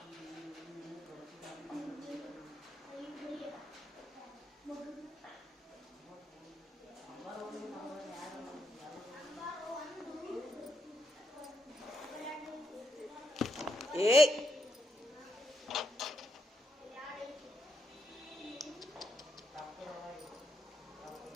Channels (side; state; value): both; normal; correlation 0.80